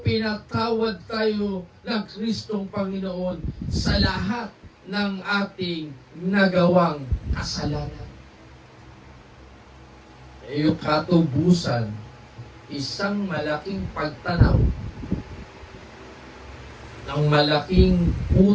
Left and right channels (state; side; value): identical; both; correlation 1.00